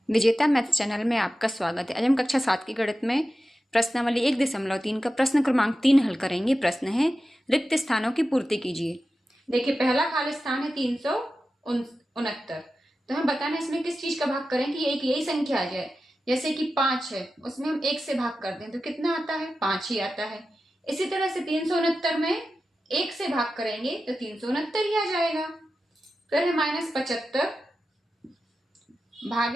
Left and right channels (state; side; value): normal; both; correlation 0.92